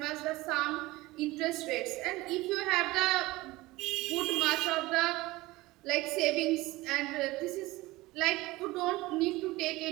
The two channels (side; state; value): left; quieter; 19.9 dB